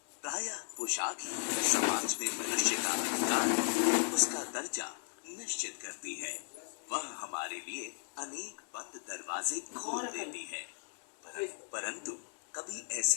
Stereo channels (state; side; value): silent; right; digital silence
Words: प्रायः पोशाक ही समाज में मनुष्य का अधिकार, उसका दर्जा निश्चित करती है। वह हमारे लिए अनेक बंद दरवाजे खोल देती है। परंतु कभी